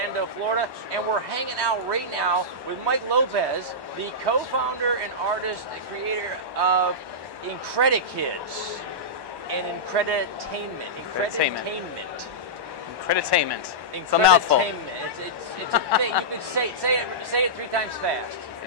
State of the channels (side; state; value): left; late; 1.1 ms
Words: Florida, and we're hanging out right now with Mike Lopez, the co-founder and artist and creator of Incredikids and Increditainment. Increditainment. It's a mouthful. It's a thing. You could say it 3 times fast.